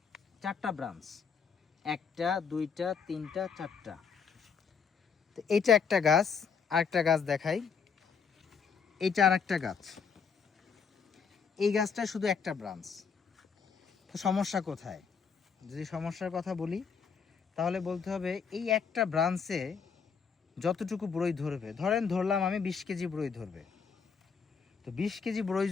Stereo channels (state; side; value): quieter; right; 6.2 dB